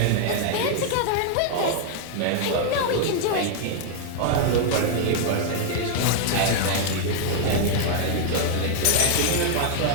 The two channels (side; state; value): both; different; correlation 0.00